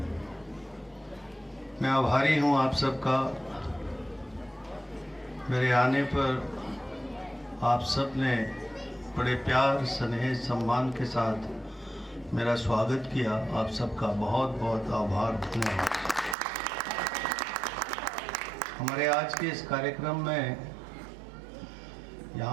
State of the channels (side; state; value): left; drops out; at 16.4 s